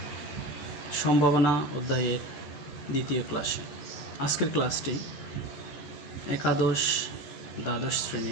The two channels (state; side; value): late; right; 14 ms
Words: সম্ভাবনা অধ্যায়ের দ্বিতীয় ক্লাসে। আজকের ক্লাসটি একাদশ দ্বাদশ